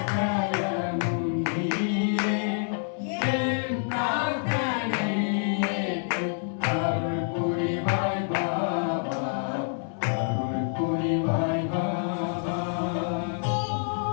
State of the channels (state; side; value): silent; right; digital silence